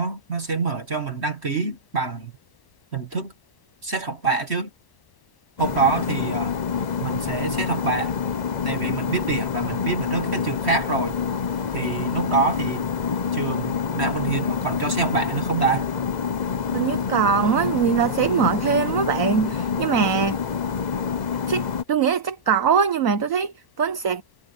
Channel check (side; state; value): right; late; 1.0 ms